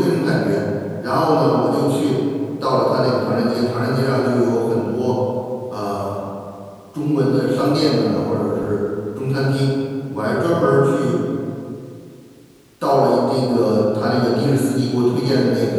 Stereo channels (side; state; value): both; identical; correlation 1.00